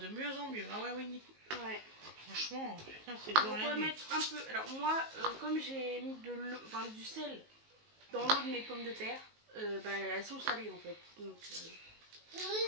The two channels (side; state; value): left; late; 19 ms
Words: mieux en mieux. Ah ouais, oui. Ouais. Franchement, putain, c'est Donc on va mettre un peu. Alors moi, comme j'ai mis de l'eau, enfin du sel dans l'eau de mes pommes de terre, bah, elles sont salées en fait. Donc